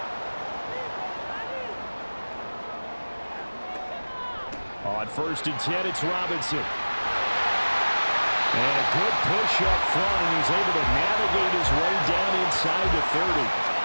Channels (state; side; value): inverted; both; correlation -1.00